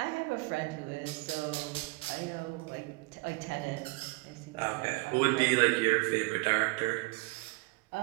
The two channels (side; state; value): left; quieter; 25.0 dB